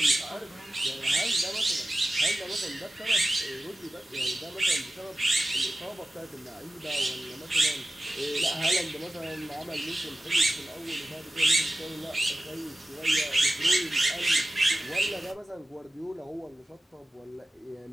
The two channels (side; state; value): both; normal; correlation 0.95